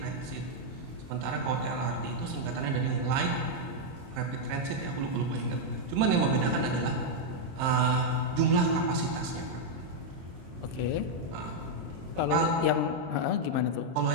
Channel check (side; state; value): left; late; 23 ms